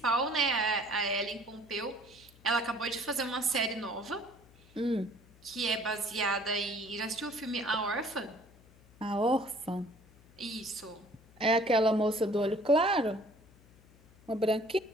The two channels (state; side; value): noise; left; hum, 26 dB below the sound